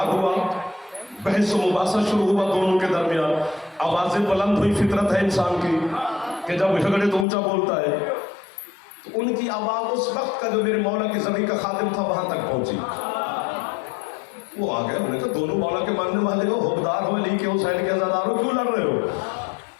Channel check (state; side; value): drops out; right; at 7.2 s